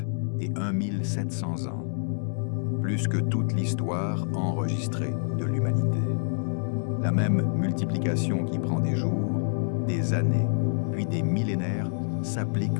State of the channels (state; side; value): silent; right; digital silence